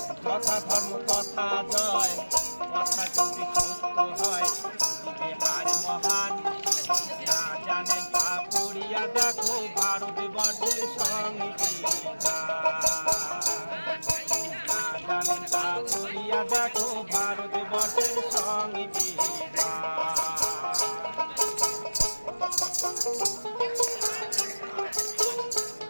কথা ধর্ম কথা জয়, কথা যদি সত্য হয়, বিহার মহান না জানেন তা পড়িয়া দেখো ভারতবর্ষের সংবিধান। না জানেন তা পড়িয়া দেখো ভারতবর্ষের সংবিধান।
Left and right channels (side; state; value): both; inverted; correlation -1.00